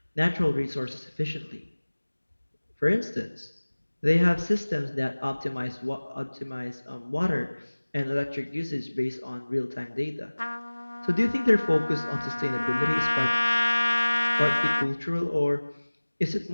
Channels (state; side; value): inverted; both; correlation -1.00